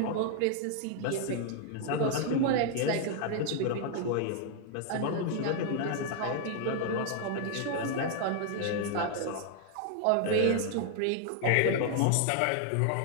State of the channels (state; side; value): different; both; correlation 0.00